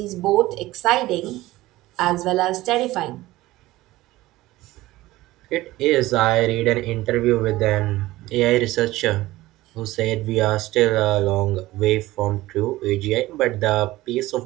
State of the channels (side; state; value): left; quieter; 17.6 dB